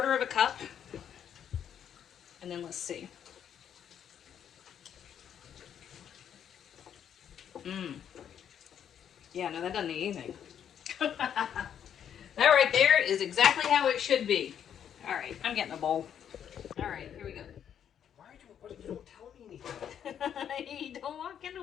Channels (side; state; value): right; quieter; 9.0 dB